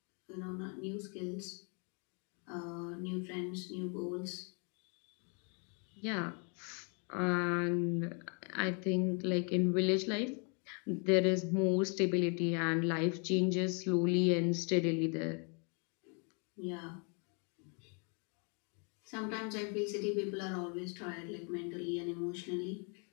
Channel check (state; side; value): quieter; right; 37.2 dB